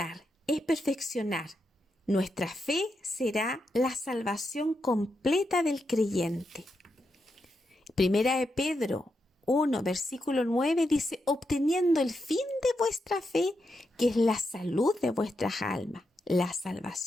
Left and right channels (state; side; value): normal; both; correlation 0.84